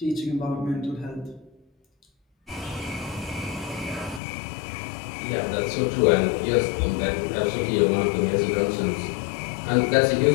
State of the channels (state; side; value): drops out; right; at 4.2 s